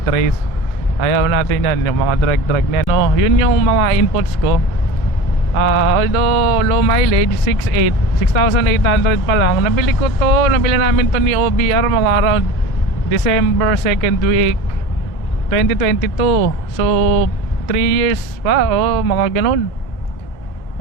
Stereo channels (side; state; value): right; late; 2.1 ms